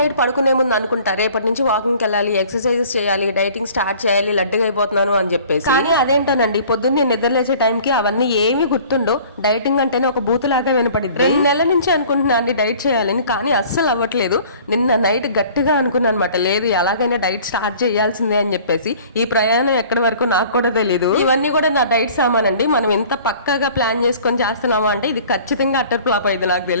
పడుకునే ముందు అనుకుంటా రేపటి నుంచి వాకింగ్కి వెళ్ళాలి, ఎక్సర్సైజెస్ చేయాలి, డైటింగ్ స్టార్ట్ చేయాలి, లడ్డుగా అయిపోతున్నాను అని చెప్పేసి. కానీ అదేంటోనండి పొద్దున్నే నిద్ర లేచే టైంకి అవన్నీ ఏమీ గుర్తుండో. డైటింగ్ అంటేనే ఒక బూతులాగా వినపడింది. 2 నెలల నుంచి అనుకుంటున్నా అండి డైట్ చేయాలని, కానీ అస్సలు అవ్వట్లేదు. నిన్న నైట్ గట్టిగా అనుకున్నాను అనమాట, లేదు ఎలాగైనా డైట్ స్టార్ట్ చేయాల్సిందే అని చెప్పేసి. ఈ ప్రయాణం ఎక్కడి వరకు నాకు కూడా తెలియదు. ఇవన్నీ కూడా నా డైట్ సామాన్ అండి. మనం ఎంత పక్కాగా ప్లాన్ చేసుకొని చేస్తున్నామా అంటే ఇది ఖచ్చితంగా అట్టర్ ఫ్లాప్ అయింది నాకు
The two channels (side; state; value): both; inverted; correlation -0.49